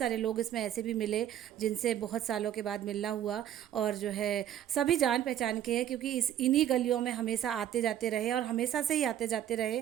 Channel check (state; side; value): quieter; left; 11.0 dB